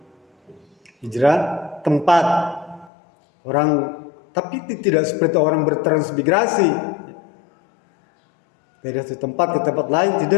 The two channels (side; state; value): right; drops out; at 2.9 s